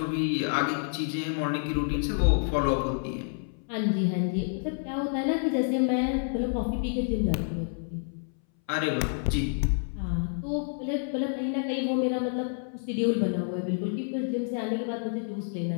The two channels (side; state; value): right; silent; 59 dB below the other